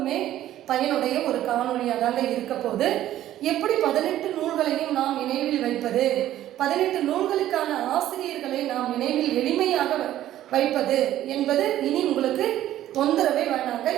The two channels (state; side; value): quieter; left; 13.0 dB